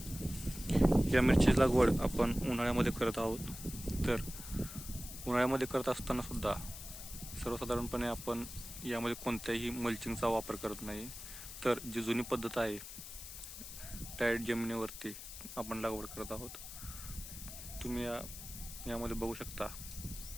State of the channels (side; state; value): left; noise; hiss, 11 dB below the sound